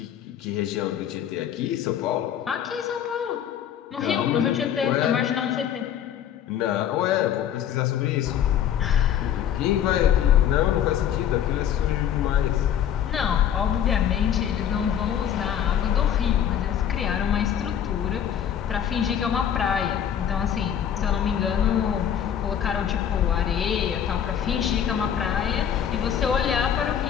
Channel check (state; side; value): quieter; right; 9.4 dB